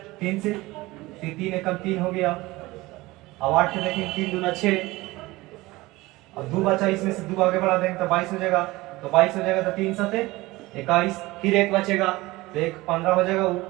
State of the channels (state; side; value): quieter; left; 20.2 dB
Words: 3 से 3 एकम 3 हो गया। अब 8 के देखेंगे, 3 दूना 6, अब 2 बचा, इसमें से 2 आगे बढ़ा देंगे तो 22 हो जाएगा, तो 22 हो जाएगा तो 3 सते 21, फिर एक बचेगा तो एक 15 हो जाएगा,